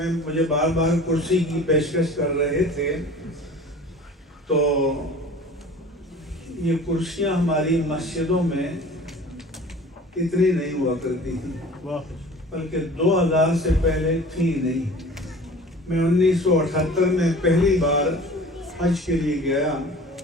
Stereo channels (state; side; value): normal; both; correlation 0.43